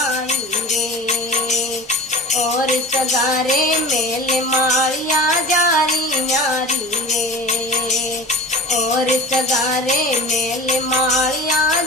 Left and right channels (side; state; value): both; normal; correlation 0.36